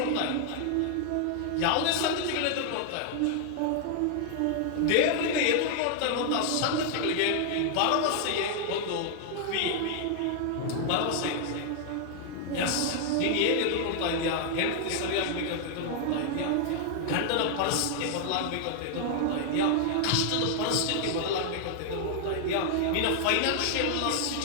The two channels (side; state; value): both; different; correlation 0.00